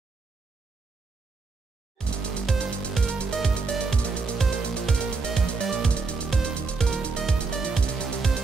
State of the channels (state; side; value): quieter; left; 4.1 dB